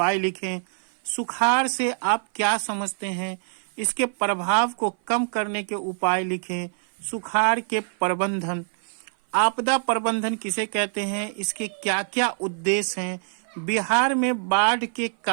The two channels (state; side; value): silent; left; 56 dB below the other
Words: लिखें। सुखाड़ से आप क्या समझते हैं? इसके प्रभाव को कम करने के उपाय लिखें। सुखाड़ के प्रबंधन, आपदा प्रबंधन किसे कहते हैं? इसके क्या क्या उद्देश्य हैं? बिहार में बाढ़ के